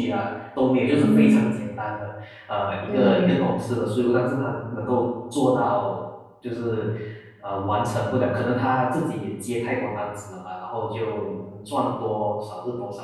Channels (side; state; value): both; identical; correlation 1.00